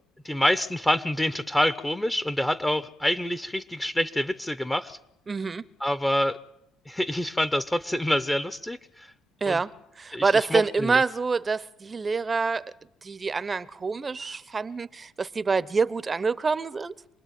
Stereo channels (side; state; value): both; normal; correlation 0.95